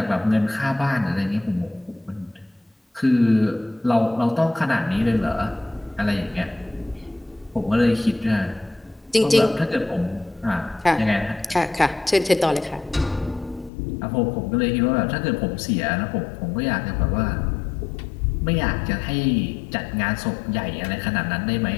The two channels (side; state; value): right; drops out; at 13.7 s